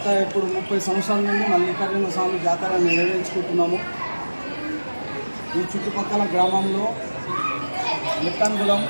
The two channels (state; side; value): inverted; both; correlation -1.00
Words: ఇప్పుడు 30 సంవత్సరాల నుండి మల్లికార్జున స్వామి జాతర నిర్వహించుకుంటున్నాము. ఈ చుట్టుపక్కల గ్రామంలో